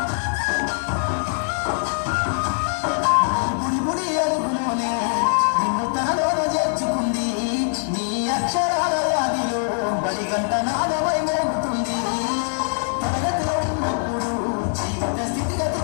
గంట నాదమై మోగుతుంది తరగతిలో ఉన్నప్పుడు జీవిత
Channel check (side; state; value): right; silent; digital silence